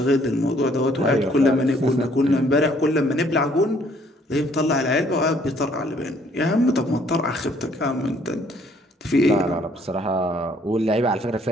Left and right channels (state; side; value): normal; both; correlation 0.63